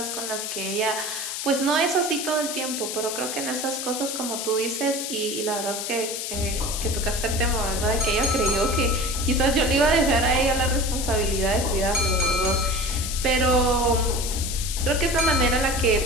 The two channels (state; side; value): noise; left; hiss, 5 dB below the sound